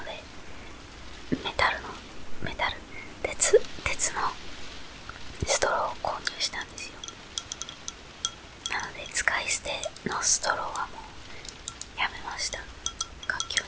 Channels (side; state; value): both; identical; correlation 1.00